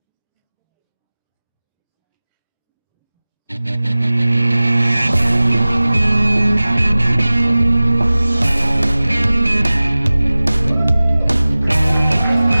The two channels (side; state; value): both; inverted; correlation -0.98